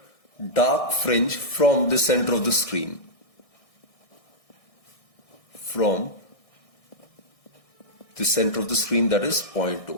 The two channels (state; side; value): late; right; 1.6 ms